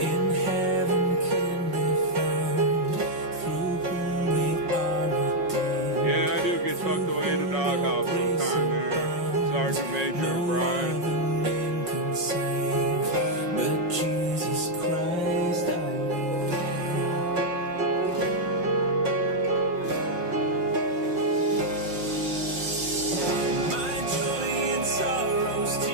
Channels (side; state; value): left; late; 5.5 ms